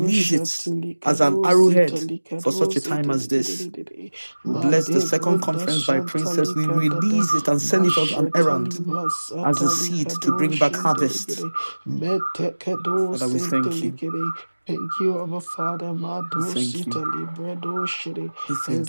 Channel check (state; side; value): inverted; both; correlation -1.00